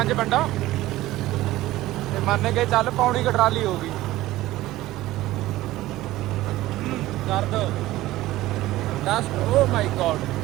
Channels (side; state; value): left; quieter; 16.6 dB